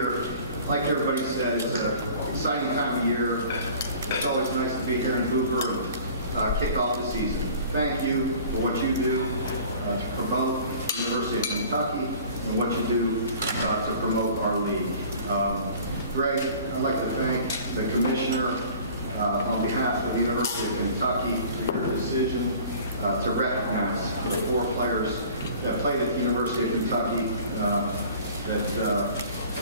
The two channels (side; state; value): both; inverted; correlation -0.46